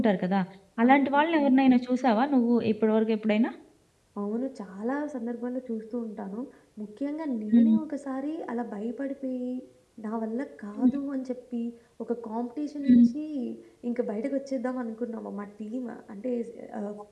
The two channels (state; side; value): identical; both; correlation 1.00